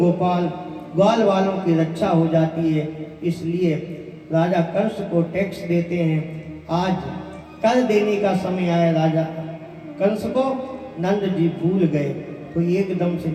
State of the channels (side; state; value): both; identical; correlation 1.00